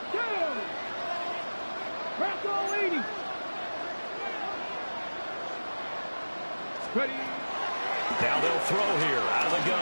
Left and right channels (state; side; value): inverted; both; correlation -1.00